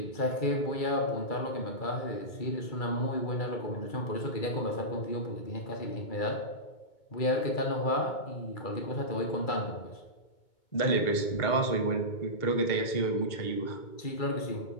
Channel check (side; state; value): right; late; 2.2 ms